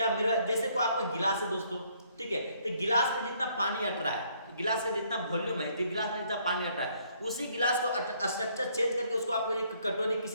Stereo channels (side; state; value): both; inverted; correlation -0.66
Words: मेरा जैसे को आपका गिलास है दोस्तों, ठीक है, तो गिलास में जितना पानी अट रहा है, गिलास का जितना वॉल्यूम है, गिलास में जितना पानी अट रहा है, उसी गिलास को स्ट्रक्चर चेंज करके उसको आप एक कटोरी